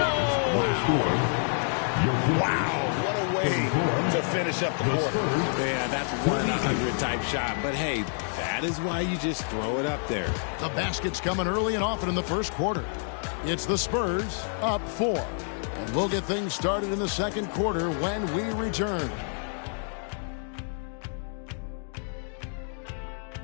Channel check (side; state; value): right; silent; 59 dB below the other